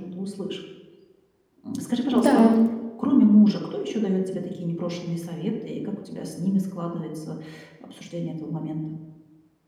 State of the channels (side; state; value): both; identical; correlation 1.00